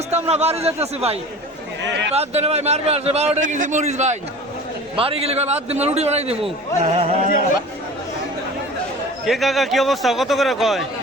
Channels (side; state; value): both; normal; correlation 0.39